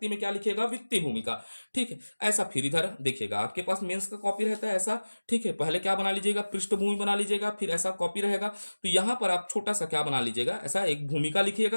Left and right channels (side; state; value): both; inverted; correlation -1.00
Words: में क्या लिखेगा, वित्तीय भूमिका, ठीक है। ऐसा फिर इधर देखिएगा, आपके पास मेंस का कॉपी रहता है ऐसा, ठीक है, पहले क्या बना लीजिएगा, पृष्ठभूमि बना लीजिएगा, फिर ऐसा कॉपी रहेगा, तो यहां पर आप छोटा सा क्या बना लीजिएगा, ऐसा एक भूमिका